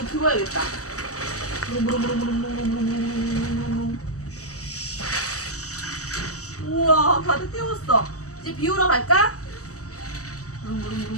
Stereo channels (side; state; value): right; late; 0.66 ms